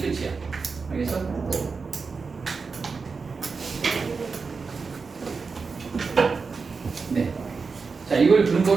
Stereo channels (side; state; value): left; quieter; 4.8 dB